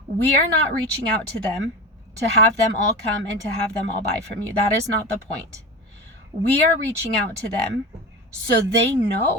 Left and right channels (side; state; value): both; normal; correlation 0.28